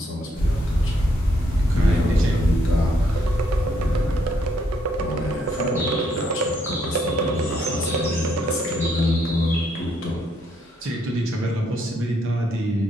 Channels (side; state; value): both; normal; correlation 0.72